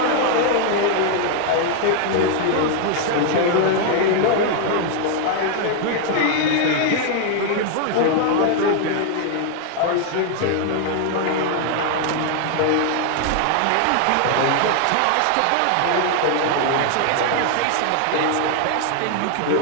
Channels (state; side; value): different; both; correlation 0.00